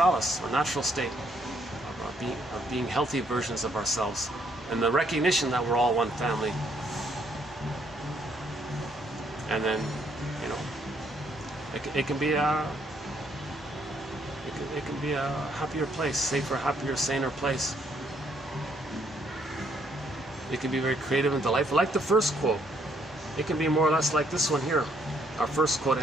or natural state, of being healthy versions of ourselves, and the recognition that we're all one family. And then, you know, it can be a happier place, safer, happier, saner place. It can be very creative and delightful, like the first quote. It can be more or less like this one here, our first quote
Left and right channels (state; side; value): normal; both; correlation 0.70